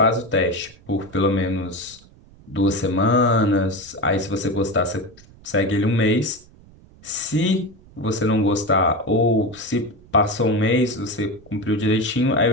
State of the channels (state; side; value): noise; right; rumble, 25 dB below the sound